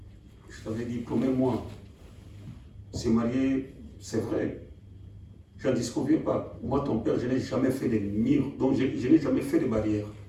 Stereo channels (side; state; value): both; identical; correlation 1.00